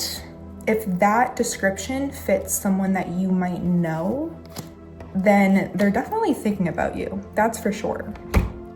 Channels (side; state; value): both; identical; correlation 1.00